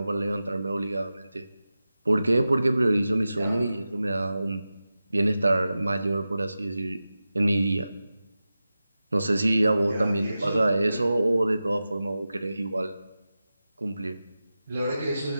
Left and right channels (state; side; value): inverted; both; correlation -0.94